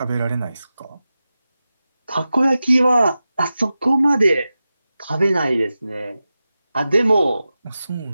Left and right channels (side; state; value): both; inverted; correlation -0.93